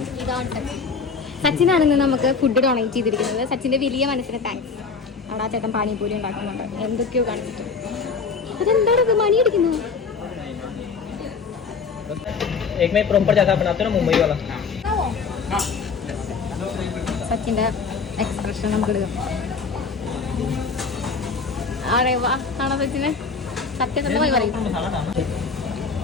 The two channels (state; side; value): quieter; right; 5.1 dB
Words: ഇതാണ് സച്ചിനാണെന്ന് നമുക്ക് ഫുഡ് ഡൊണേറ്റ് ചെയ്തിരിക്കുന്നത്. സച്ചിന്റെ വലിയ മനസ്സിന് താങ്ക്സ്. അവിടെ ആ ചേട്ടൻ പാനിപ്പൂരി ഉണ്ടാക്കുന്നുണ്ട്, എന്തൊക്കെയോ കാണിച്ചിട്ട്. അതെന്താണ് ഇത് മണി അടിക്കുന്നത്? സച്ചിന്റെ എക്സ്പ്രഷൻ നമുക്ക് എടുക്കാം. ആണോ സച്ചിന്? സത്യസന്ധമായി പറയും.